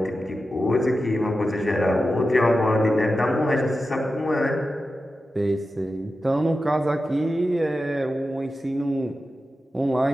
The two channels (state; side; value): normal; both; correlation 0.92